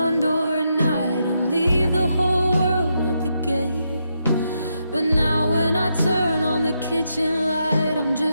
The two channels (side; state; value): both; inverted; correlation -0.82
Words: door at night and leave the whole world at the gate. But now when I turn on the kitchen light, I'm